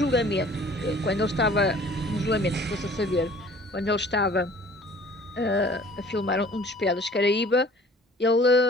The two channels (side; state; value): both; normal; correlation 0.50